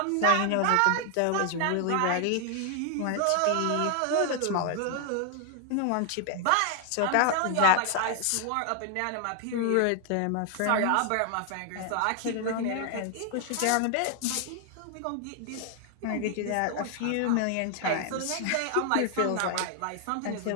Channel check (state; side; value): different; both; correlation 0.00